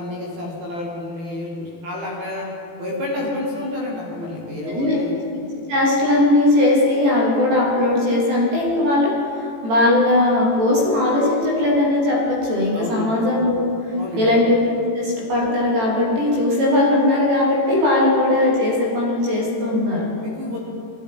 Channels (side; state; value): left; late; 18 ms